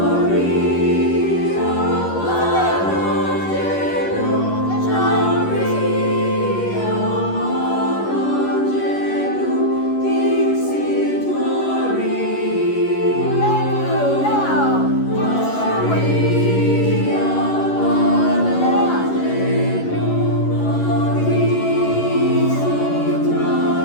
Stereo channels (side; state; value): right; late; 11 ms